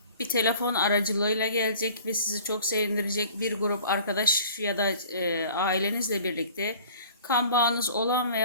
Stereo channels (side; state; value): both; inverted; correlation -0.47